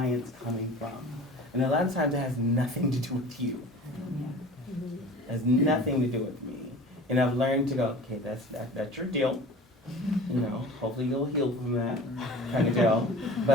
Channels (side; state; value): both; normal; correlation 0.41